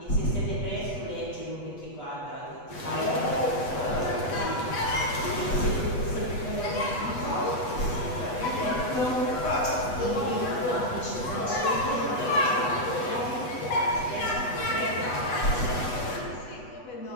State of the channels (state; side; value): late; right; 8.1 ms